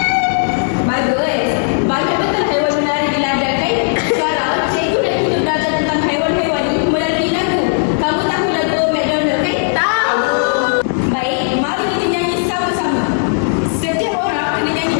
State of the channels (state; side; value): silent; right; digital silence